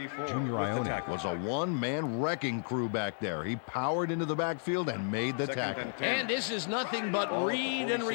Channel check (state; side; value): silent; right; 56 dB below the other